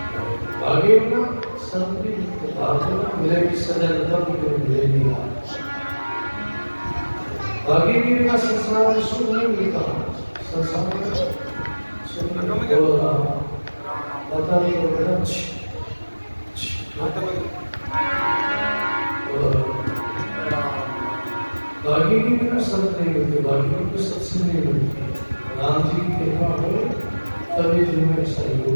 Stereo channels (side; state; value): both; inverted; correlation -1.00